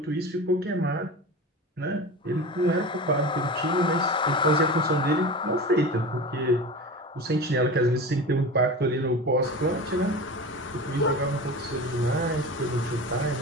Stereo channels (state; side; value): normal; both; correlation 0.31